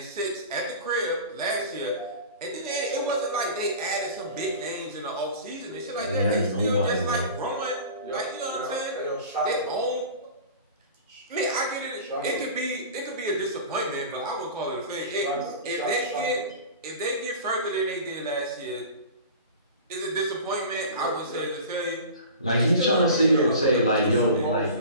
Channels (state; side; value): inverted; both; correlation -0.37